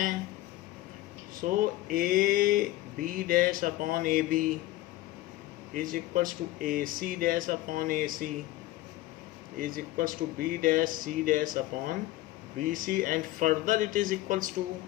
so A B dash upon A B is equals to A C dash upon A C is equals to b dash c dash upon bc, and further it is equals to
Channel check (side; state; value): right; quieter; 16.5 dB